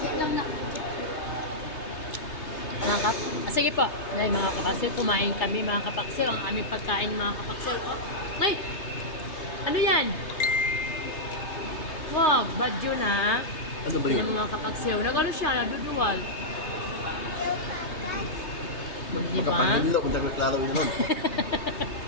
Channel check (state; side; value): late; right; 3.3 ms